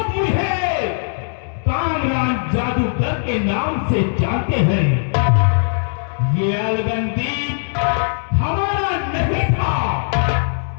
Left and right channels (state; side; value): silent; right; digital silence